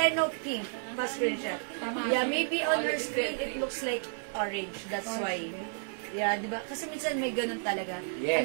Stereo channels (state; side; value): silent; left; digital silence